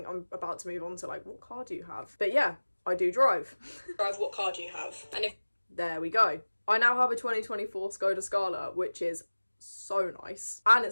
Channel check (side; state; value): both; inverted; correlation -1.00